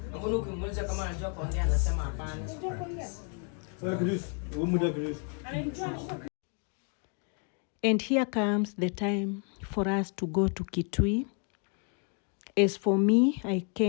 Mbona ukimuuliza kama anajua kuongea anasema hapana. And here comes the time for us to go to Kitui. As for me, I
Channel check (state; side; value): quieter; right; 39.7 dB